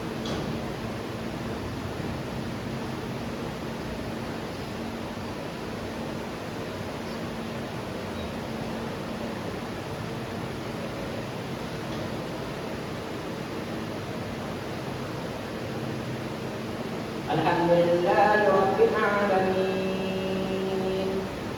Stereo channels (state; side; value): identical; both; correlation 1.00